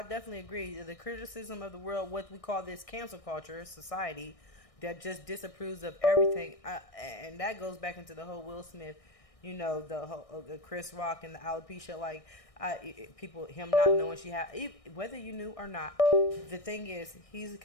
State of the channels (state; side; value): late; right; 1.6 ms